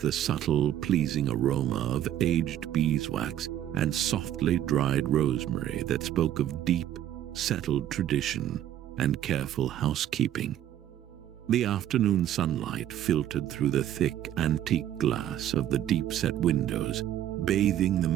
subtle, pleasing aroma of aged beeswax and softly dried rosemary that spoke of deep, settled tradition and careful housekeeping. The afternoon sunlight filtered through the thick, antique glass of the deep-set windows, bathing the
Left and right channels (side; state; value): left; quieter; 11.5 dB